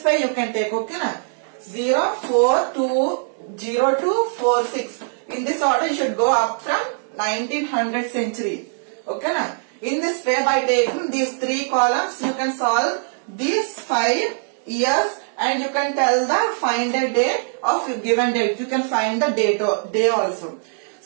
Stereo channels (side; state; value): left; silent; digital silence